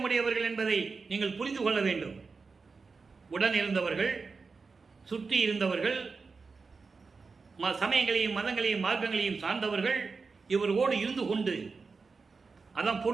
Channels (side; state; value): left; quieter; 4.6 dB